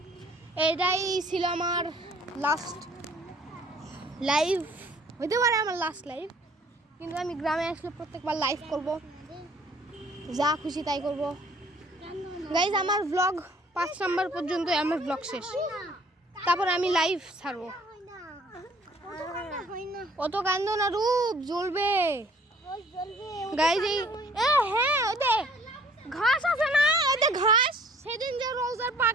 এটাই ছিল আমার লাস্ট লাইভ, হইতে পারে আমার লাস্ট লাইভ, কিন্তু আমি গ্রামে আসলে প্রত্যেকবার লাইভ করব, যা খুশি তাই করব। গাইস আমার ব্লগ 5 নাম্বার পর্যন্ত আমার ব্লগ শেষ, তারপর আমি লাইভ ছাড়বো। অত কান্দো না, রূপ জ্বলবে। গাইস হ্যাঁ, ওতে ঘাস আছে না, ওতে ঘাস সেদিন যে রোজার পা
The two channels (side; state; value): both; normal; correlation 0.56